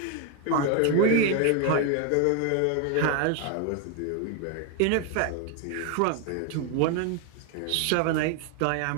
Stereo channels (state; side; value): different; both; correlation 0.01